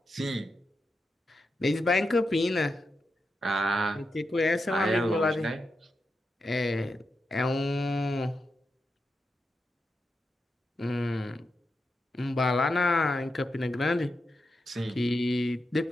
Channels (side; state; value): both; normal; correlation 0.87